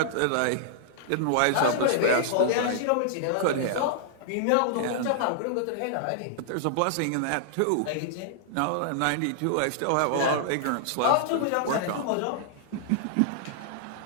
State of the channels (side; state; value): both; different; correlation -0.01